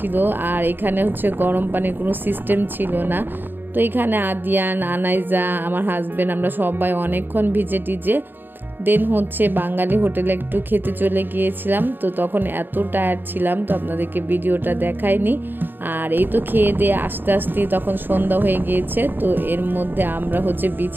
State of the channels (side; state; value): left; late; 0.094 ms